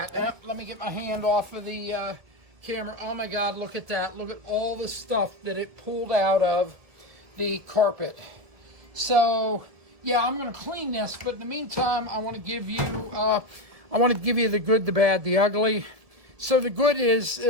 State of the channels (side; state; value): left; late; 1.6 ms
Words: Let me get my hand off of the camera. Oh my god, look at that. Look at all the stuff that it pulled out of the carpet. So yeah, I'm going to clean this, but in the meantime, I want to give you the good, the bad, the ugly. So the good is,